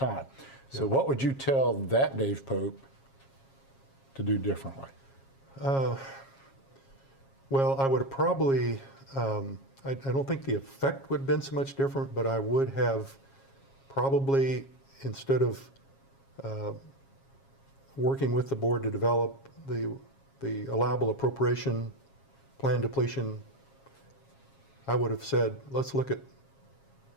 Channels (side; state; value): right; late; 7.3 ms